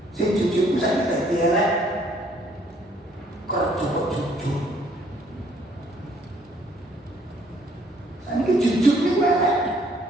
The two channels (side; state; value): both; normal; correlation 0.63